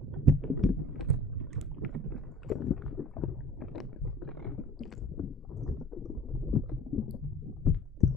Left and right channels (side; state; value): both; normal; correlation 0.46